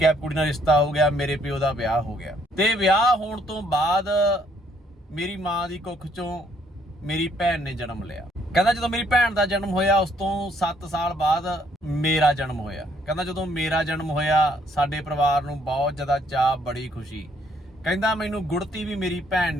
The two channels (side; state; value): both; normal; correlation 0.67